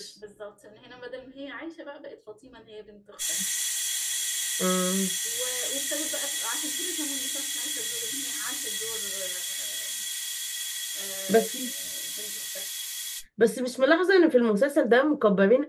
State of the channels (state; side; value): identical; both; correlation 1.00